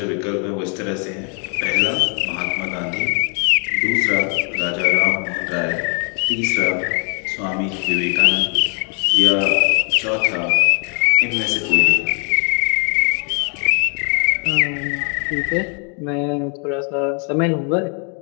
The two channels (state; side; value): quieter; right; 37.9 dB